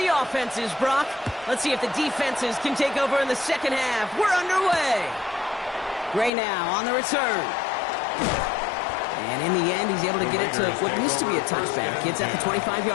offenses, Brock. Let's see if the defenses can take over in the second half. We're underway. Gray now on the return. And in the end, he's able to get it to what used to be a touchback. It's at the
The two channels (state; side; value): drops out; right; at 6.3 s